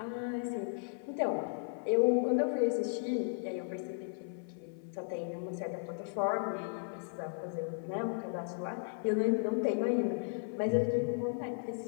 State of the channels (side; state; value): right; silent; 54 dB below the other